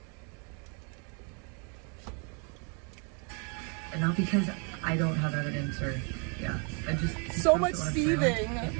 And not because I don't have evidence or, yeah. I just So much wanna seething. Say, like, get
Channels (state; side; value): quieter; left; 36.8 dB